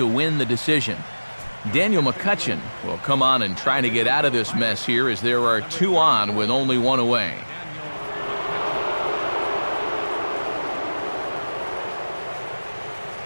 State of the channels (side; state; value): both; inverted; correlation -1.00